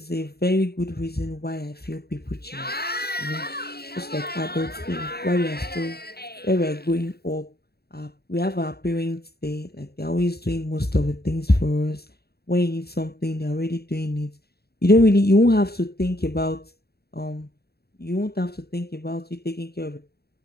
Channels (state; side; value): late; right; 0.46 ms